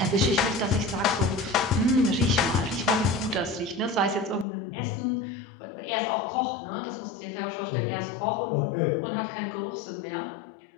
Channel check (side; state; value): right; drops out; at 4.5 s